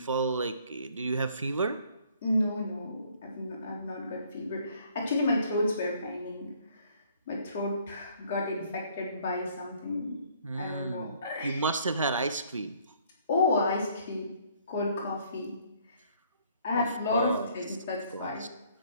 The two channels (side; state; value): both; inverted; correlation -0.61